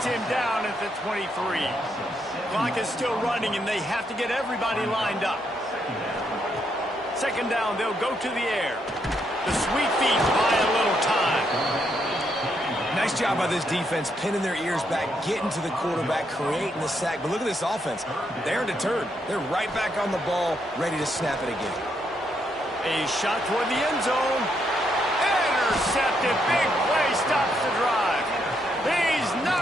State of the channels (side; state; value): both; normal; correlation 0.77